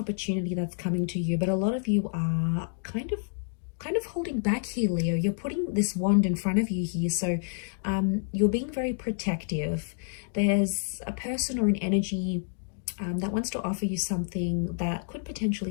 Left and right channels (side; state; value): right; silent; digital silence